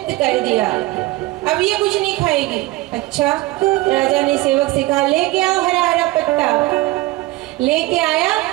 कर दिया, अब ये कुछ नहीं खाएगी। अच्छा, राजा ने सेवक से कहा लेके आओ हरा हरा पत्ता। लेके आया,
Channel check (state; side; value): quieter; left; 19.5 dB